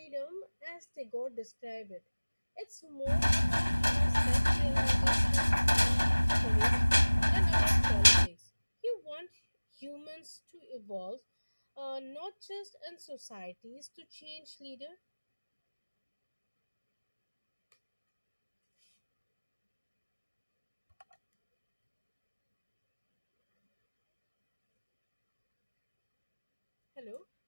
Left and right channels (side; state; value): both; inverted; correlation -1.00